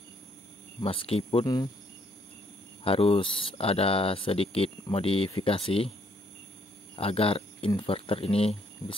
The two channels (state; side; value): normal; both; correlation 0.69